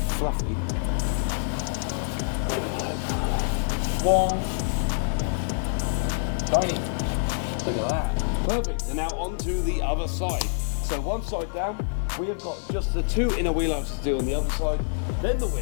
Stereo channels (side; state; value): right; silent; 61 dB below the other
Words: There we go. One. Tiny. Look at that. Perfect. And now on to the other side. So one side down, we have got just the two inner wheel arches to do on the other side, then the